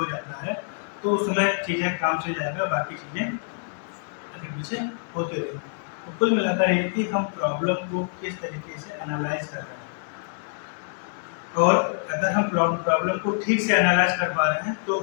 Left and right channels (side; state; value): right; silent; digital silence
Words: जाता है तो उस समय चीज़ें काम से जाएगा, बाकी चीज़ें आगे पीछे होते रहेंगे। तो कुल मिलाकर ये कि हम प्रॉब्लम को किस तरीके से एनालाइज कर रहे हैं, और अगर हम प्रॉब्लम को ठीक से एनालाइज कर पा रहे हैं तो